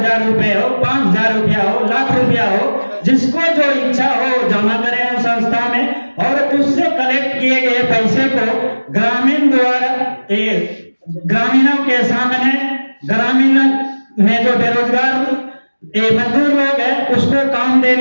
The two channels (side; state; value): both; inverted; correlation -1.00